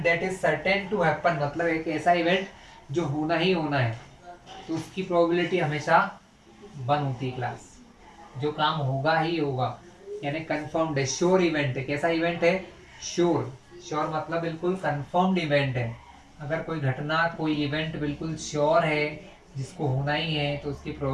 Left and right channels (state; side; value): identical; both; correlation 1.00